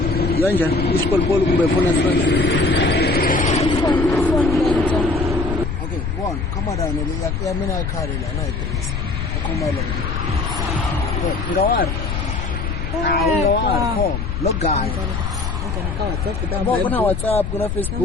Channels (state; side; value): noise; left; rumble, 3 dB below the sound